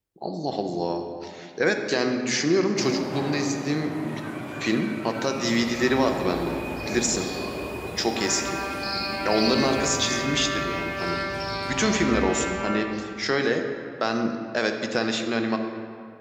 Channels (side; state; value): both; identical; correlation 1.00